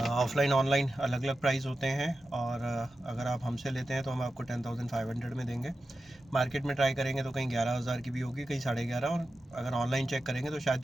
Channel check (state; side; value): normal; both; correlation 0.92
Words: ऑनलाइन अलग अलग प्राइस होते हैं, और अगर आप हमसे लेते हैं तो हम आपको 10,500 में देंगे। मार्केट में ट्राई करेंगे तो कहीं 11,000 की भी होगी, कहीं 11,500, और अगर ऑनलाइन चेक करेंगे तो शायद